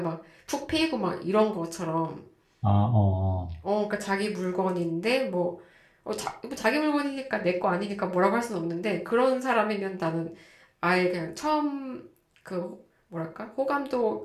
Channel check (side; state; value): both; identical; correlation 1.00